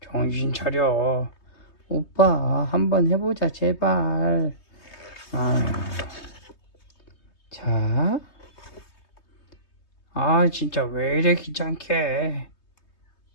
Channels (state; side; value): late; right; 3.2 ms